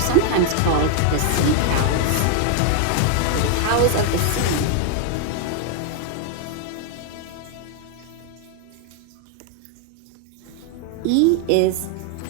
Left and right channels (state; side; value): different; both; correlation 0.00